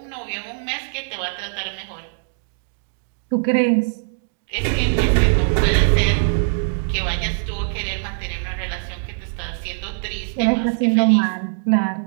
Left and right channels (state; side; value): silent; left; digital silence